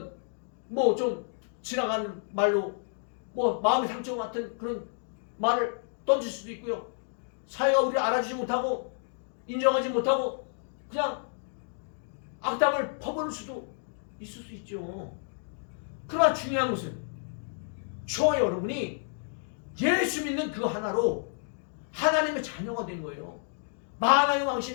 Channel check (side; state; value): right; silent; digital silence